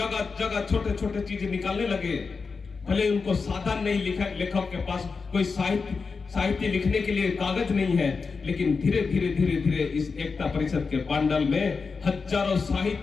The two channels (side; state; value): right; quieter; 4.8 dB